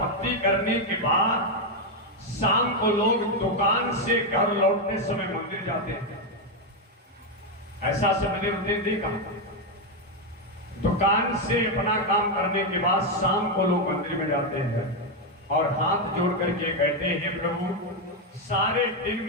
करने के बाद शाम को लोग दुकान से घर लौटने समय मंदिर जाते हैं। ऐसा से मैंने देखा, दुकान से अपना काम करने के बाद शाम को लोग मंदिर में जाते हैं और हाथ जोड़ करके कहते हैं, प्रभु सारे दिन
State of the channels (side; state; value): both; normal; correlation 0.04